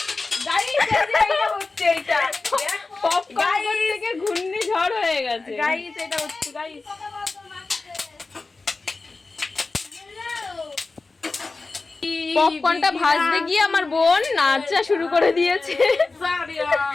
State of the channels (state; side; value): quieter; right; 3.7 dB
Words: গাইস এটা হচ্ছে, এটা পপকর্ন থেকে ঘূর্ণিঝড় হয়ে গেছে গাইস, এটা হচ্ছে গাইস। পপকর্নটা ভাজতে গিয়ে আমার বোন নাচা শুরু করে দিয়েছে।